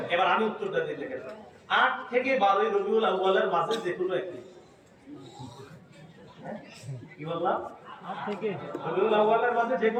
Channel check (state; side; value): identical; both; correlation 1.00